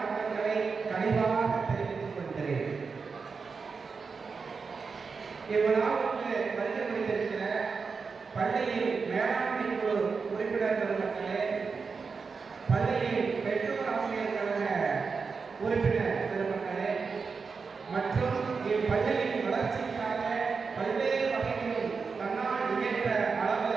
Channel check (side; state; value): left; quieter; 5.0 dB